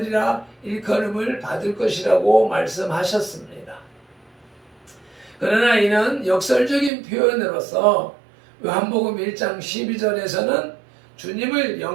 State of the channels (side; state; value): left; drops out; at 6.9 s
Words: 일컬음을 받을 것이라고 말씀하셨습니다. 그러나 이는 역설적인 표현으로서 요한복음 1장 12절에서는 주님을